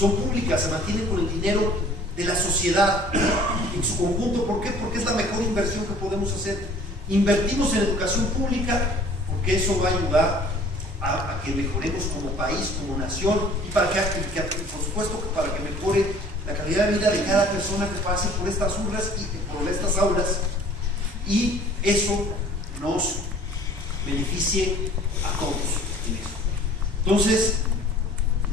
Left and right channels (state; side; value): normal; both; correlation 0.52